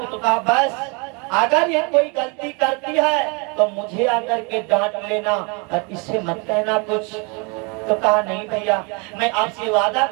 तो कहा बस अगर ये कोई गलती करती है तो मुझे आकर के डांट लेना और इससे मत कहना कुछ। तो कहा नहीं भैया, मैं आपसे वादा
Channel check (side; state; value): left; quieter; 32.3 dB